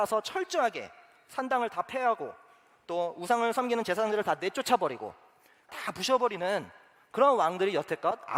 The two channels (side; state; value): both; identical; correlation 1.00